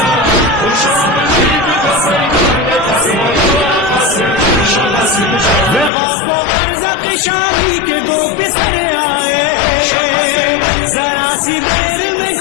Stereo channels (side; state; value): right; drops out; at 5.9 s